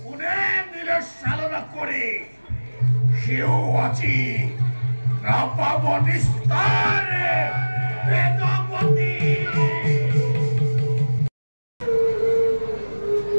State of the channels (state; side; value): inverted; both; correlation -1.00